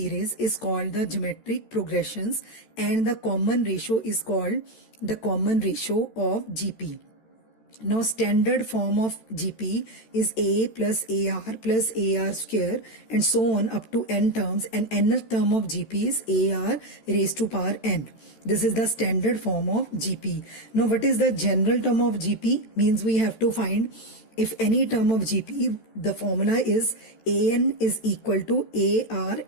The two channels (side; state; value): right; late; 13 ms